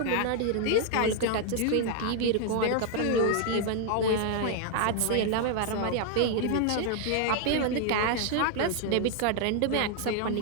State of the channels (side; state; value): both; different; correlation 0.00